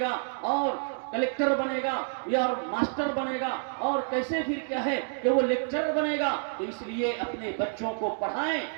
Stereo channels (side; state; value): left; silent; digital silence